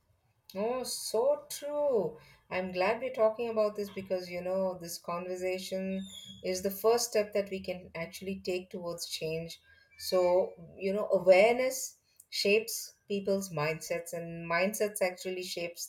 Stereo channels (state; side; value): identical; both; correlation 1.00